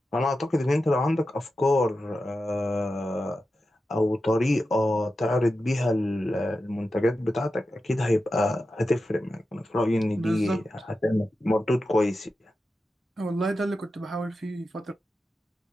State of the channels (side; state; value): both; normal; correlation 0.91